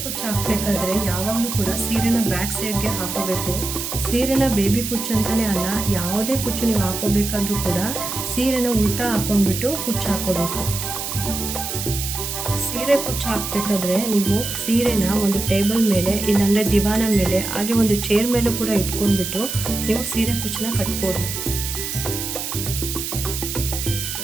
ಕುಚ್ಚು ಹಾಕಬೇಕಾದ್ರೆ ಯಾವಾಗಲೂ ಕೂಡ ಸೀರೆನ ಬ್ಯಾಕ್ ಸೈಡ್ಗೆ ಹಾಕೋಬೇಕು. ಸೀರೆನ ಬೇಬಿ ಕುಚ್ಚು ಅಂತಲೇ ಅಲ್ಲ, ಯಾವುದೇ ಕುಚ್ಚು ನೀವು ಹಾಕೋಬೇಕಾದ್ರೂ ಕೂಡ ಸೀರೆನ ಉಲ್ಟಾ ಹಾಕೊಂಡ್ಬಿಟ್ಟು ಕುಚ್ಚು ಹಾಕೋಬೇಕು. ಸೀರೆ ಕುಚ್ಚು ಹಾಕಬೇಕಾದ್ರೆ ನೀವು ಸೀರೆನ ಒಂದು ಟೇಬಲ್ ಮೇಲೆ ಇಲ್ಲಾಂದರೆ ದಿವಾನ ಮೇಲೆ ಹಾಗೆ ಒಂದು ಚೇರ್ ಮೇಲೂ ಕೂಡ ಇಟ್ಕೊಂಡ್ಬಿಟ್ಟು ನೀವು ಸೀರೆ ಕುಚ್ಚನ್ನ ಕಟ್ಬೋದು.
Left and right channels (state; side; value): noise; right; hiss, 5 dB below the sound